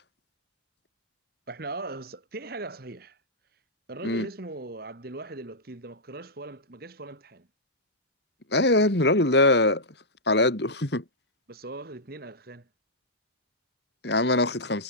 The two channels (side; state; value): both; normal; correlation -0.11